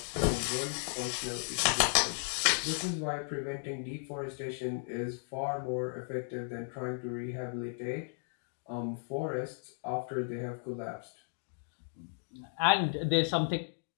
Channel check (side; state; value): right; silent; digital silence